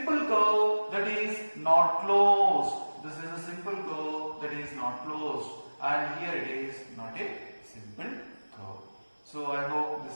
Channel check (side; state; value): both; inverted; correlation -1.00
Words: curve that is not closed. This is a simple curve that is not closed. And here it is not a simple curve. So I hope